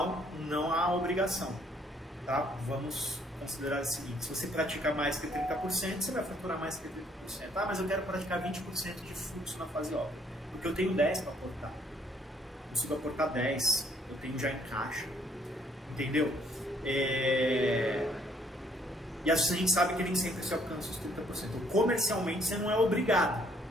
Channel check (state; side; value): normal; both; correlation 0.65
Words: não há obrigação. Tá? Vamos considerar o seguinte: se você praticar mais que 30%, você vai faturar mais que 30%. Ah, mas eu quero praticar 20% de fluxo na fase obra, porque eu tenho 10 para aportar. Eu consigo aportar 10, eu tenho já em caixa. Entendeu? E a gente sabe que nem sempre se alcança os 30%. Então, comercialmente você não é obrigado.